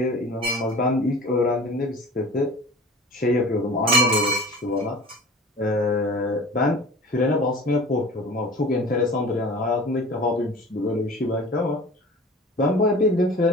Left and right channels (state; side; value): normal; both; correlation 0.40